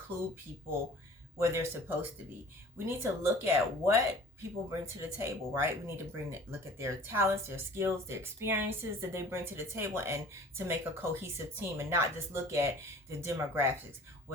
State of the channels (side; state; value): both; normal; correlation 0.46